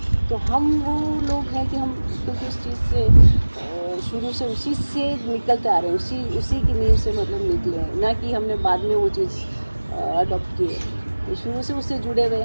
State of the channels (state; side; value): inverted; both; correlation -1.00